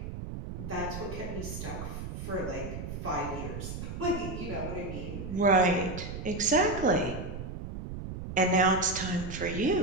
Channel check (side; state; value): right; noise; rumble, 7 dB below the sound